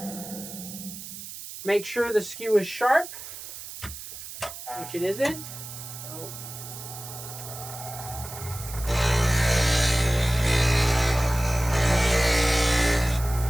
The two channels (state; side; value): noise; right; hiss, 12 dB below the sound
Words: Make sure the skew is sharp, which it isn't.